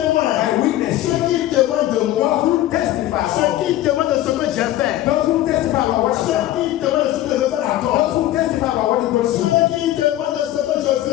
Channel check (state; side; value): quieter; right; 14.2 dB